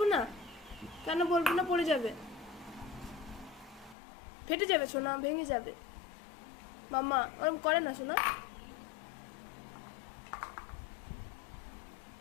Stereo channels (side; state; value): right; drops out; at 4.0 s